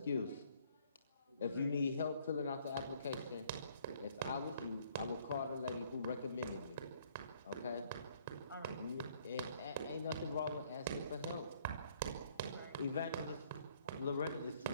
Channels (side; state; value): both; inverted; correlation -0.62